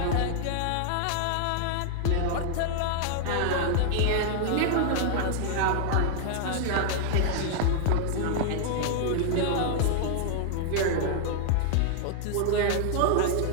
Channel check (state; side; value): different; both; correlation -0.01